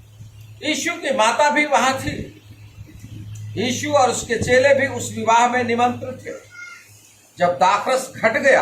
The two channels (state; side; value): identical; both; correlation 1.00